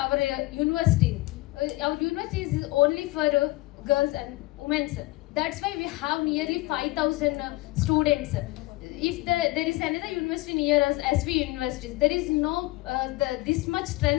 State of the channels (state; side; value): quieter; right; 20.6 dB